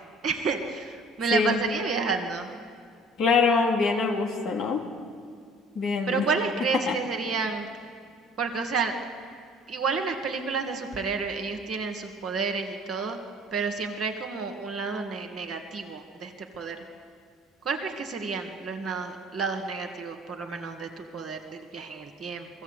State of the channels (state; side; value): normal; both; correlation 0.51